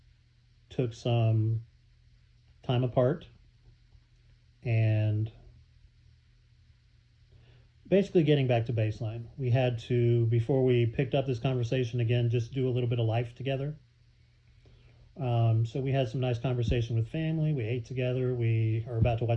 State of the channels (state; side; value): identical; both; correlation 1.00